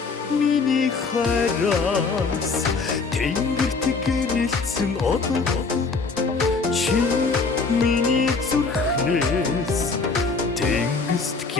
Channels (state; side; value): quieter; right; 4.4 dB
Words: миний хараас тэнгэрт гэрэлцэн одоо чи миний зүрхнээс тэнгист